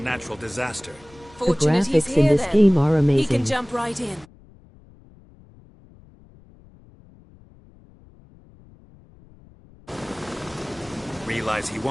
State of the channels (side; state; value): left; noise; rumble, 26 dB below the sound